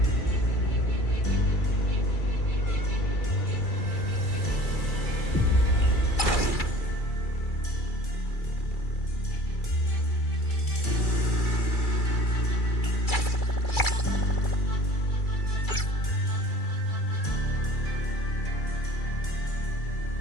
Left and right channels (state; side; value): late; right; 2.3 ms